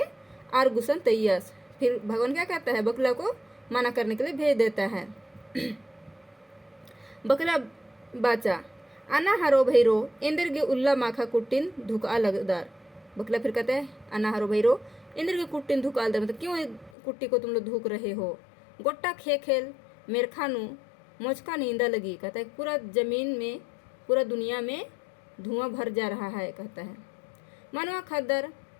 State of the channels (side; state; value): right; drops out; at 16.9 s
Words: आर गुसन तैयस, फिर भगवान क्या कहता है बकला को मना करने के लिए भेज देता है। बकला बाचा अना हरो भैरो इंद्र के उल्ला माखा कुटिन धुका लगदार। बकला फिर कहता है अना हरो भैरो इंद्र के कुटिन धुका लगदार, मतलब क्यों कुट्टी को तुम लोग धुक रहे हो। गोट्टा खेल मेरखानु मोचका नींदा लगी, कहता है पूरा जमीन में पूरा दुनिया में धुआं भर जा रहा है कहता है। मनवा खद्दर